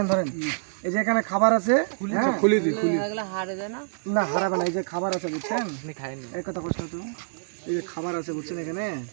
ধরেন, এই যে এখানে খাবার আছে, খুলি দিই, খুলি না, হারাবে না, এই যে খাবার আছে, বুঝছেন, এই কথা কষ্ট তো, এই যে খাবার আছে, বুঝছেন, এখানে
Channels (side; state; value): left; silent; digital silence